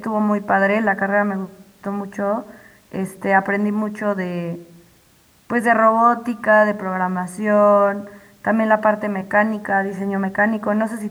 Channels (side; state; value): both; identical; correlation 1.00